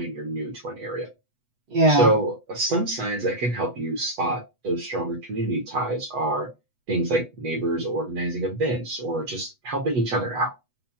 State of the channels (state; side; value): late; left; 8.1 ms